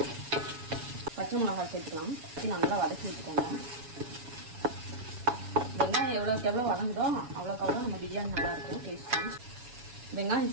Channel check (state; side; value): late; left; 7.6 ms